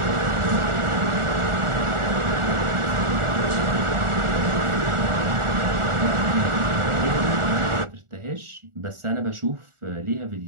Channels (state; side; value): late; left; 1.4 ms